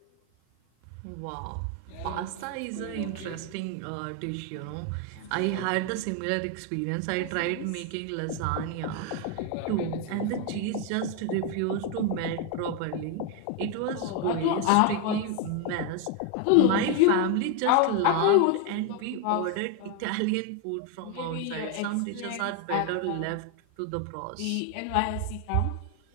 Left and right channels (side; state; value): both; different; correlation 0.01